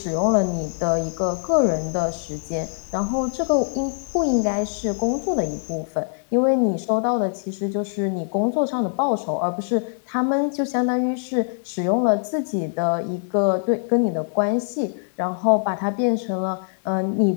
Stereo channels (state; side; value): silent; right; 63 dB below the other